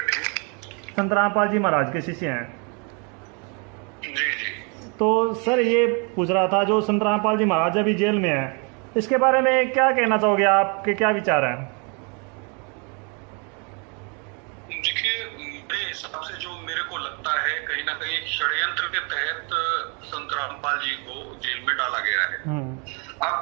संत रामपाल जी महाराज के शिष्य हैं। जी जी। तो सर ये पूछ रहा था, जो संत रामपाल जी महाराज अभी जेल में हैं, इसके बारे में क्या कहना चाहोगे? आपके क्या विचार हैं? देखिए, मेरे हिसाब से जो मेरे को लगता है, कहीं ना कहीं षड्यंत्र के तहत संत रामपाल जी को जेल में डाला गया है। अब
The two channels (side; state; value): left; quieter; 34.8 dB